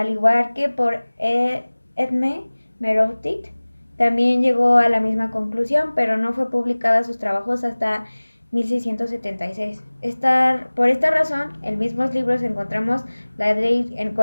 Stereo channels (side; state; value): both; inverted; correlation -1.00